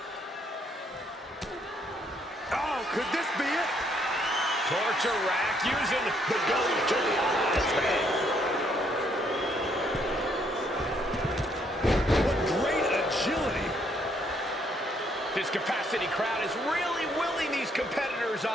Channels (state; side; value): normal; both; correlation 0.70